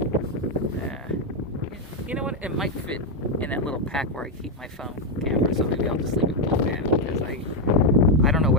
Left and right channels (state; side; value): normal; both; correlation 0.04